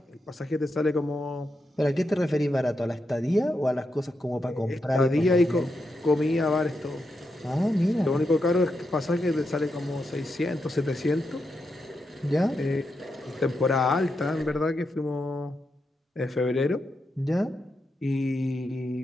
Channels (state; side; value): normal; both; correlation 0.85